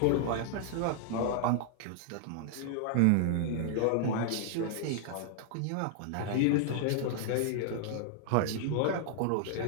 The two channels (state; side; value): different; both; correlation 0.00